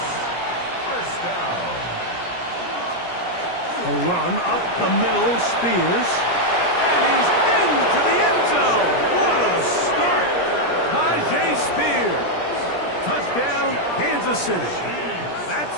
First down. A run up the middle, Spears. And he's into the end zone. What a start. Tyjae Spears. Touchdown, Kansas City. That's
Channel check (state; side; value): late; right; 17 ms